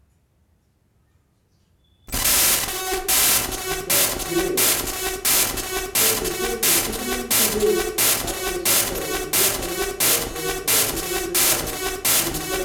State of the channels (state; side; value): identical; both; correlation 1.00